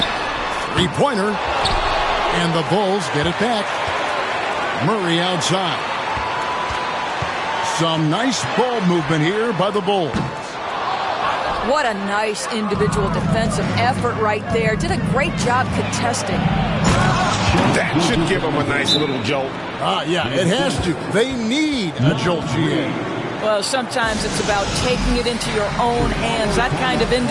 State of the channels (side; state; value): both; identical; correlation 1.00